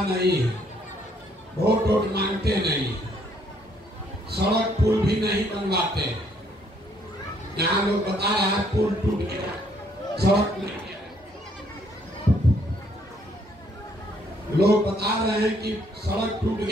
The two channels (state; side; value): normal; both; correlation 0.67